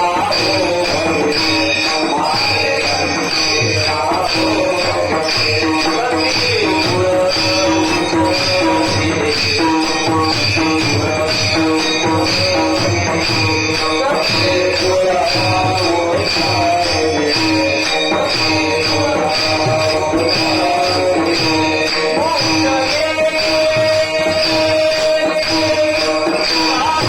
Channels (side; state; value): both; identical; correlation 1.00